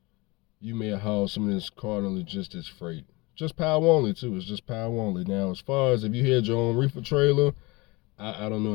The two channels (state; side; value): quieter; right; 24.4 dB